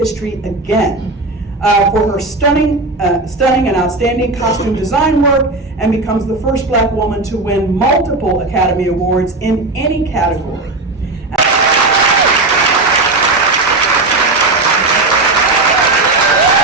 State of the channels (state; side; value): quieter; left; 3.1 dB